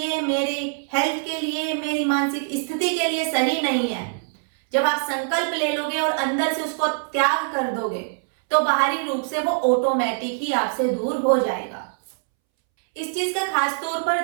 मेरे हेल्थ के लिए, मेरी मानसिक स्थिति के लिए सही नहीं है, जब आप संकल्प ले लोगे और अंदर से उसको त्याग कर दोगे तो बाहरी रूप से वो ऑटोमेटिक ही आपसे दूर हो जाएगा। इस चीज का खास तौर पर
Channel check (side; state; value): left; silent; 63 dB below the other